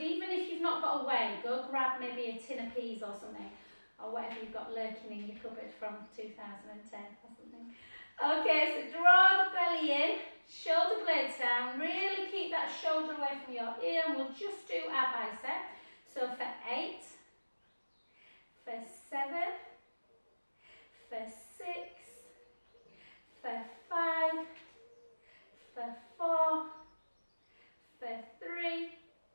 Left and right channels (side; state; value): both; inverted; correlation -1.00